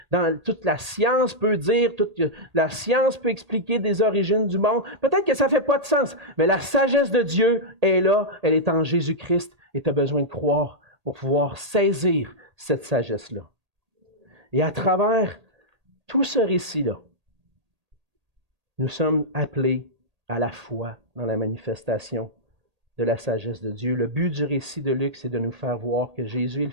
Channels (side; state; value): left; late; 1.8 ms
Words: toute la science peut dire, toute la science peut expliquer des origines du monde. Peut-être que ça ne fait pas de sens, mais la sagesse de Dieu est là, elle est en Jésus-Christ et tu as besoin de croire pour pouvoir saisir cette sagesse-là. Et à travers tout ce récit-là, nous sommes appelés à la foi dans la manifestation de la sagesse de Dieu. Le but du récit de Luc, c'est de nous faire voir que Jésus est le